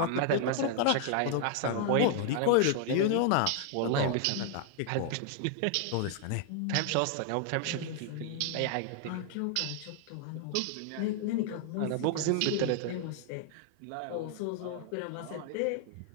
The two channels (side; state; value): both; different; correlation 0.00